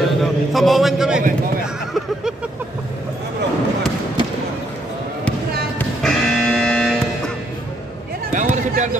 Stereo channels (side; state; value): both; normal; correlation 0.73